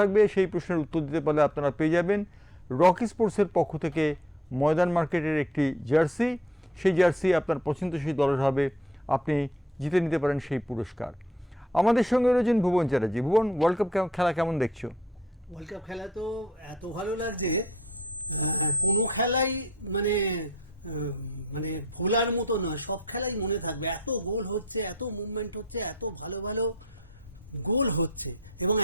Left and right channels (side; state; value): both; normal; correlation 0.58